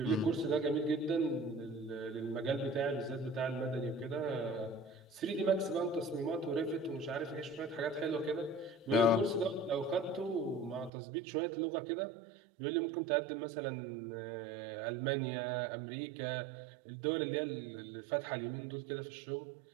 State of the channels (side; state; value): left; drops out; at 10.9 s